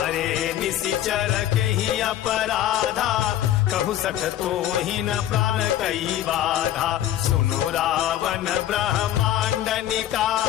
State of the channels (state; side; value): quieter; right; 12.2 dB